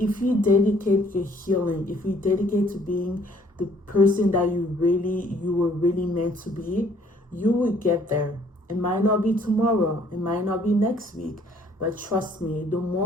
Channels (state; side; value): normal; both; correlation 0.61